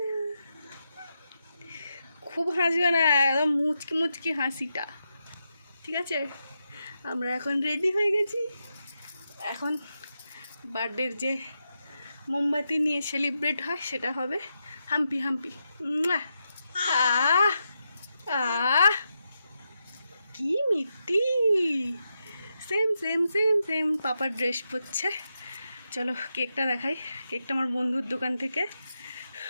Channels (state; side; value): inverted; both; correlation -0.86